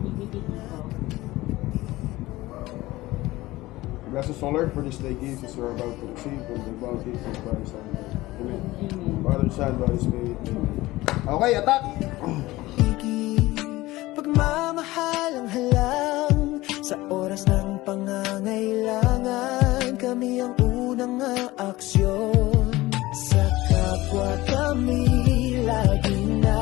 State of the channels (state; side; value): quieter; right; 18.6 dB